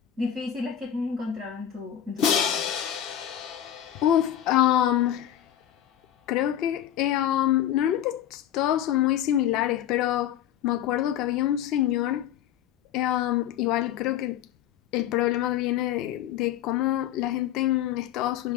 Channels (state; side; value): quieter; right; 11.1 dB